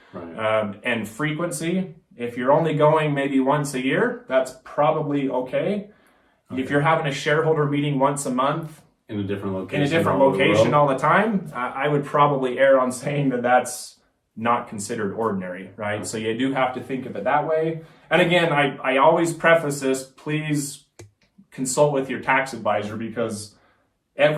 And frequency, if you're only going maybe once a year, that's probably okay. If you're having a shareholder meeting once a month, in a different location all the time, I would probably err on saying that that's not considered ordinary, right? So you do have to think of it that way. And again, I always preface this, please consult with your tax advisor because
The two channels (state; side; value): identical; both; correlation 1.00